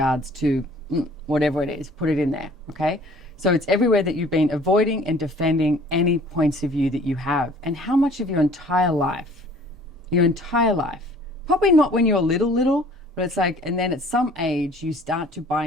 to whatever it is? Put it in there, okay? So it's everywhere that you've been avoiding and defending any points of view that you have. And how much of your entire life, probably not when you're little, but it's like, and then at some age, you start to buy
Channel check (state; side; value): normal; both; correlation 0.52